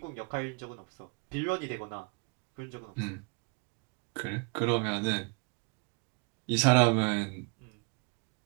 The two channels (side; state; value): left; quieter; 33.9 dB